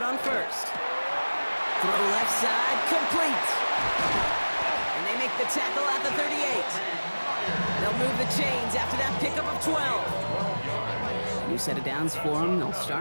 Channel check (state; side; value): inverted; both; correlation -1.00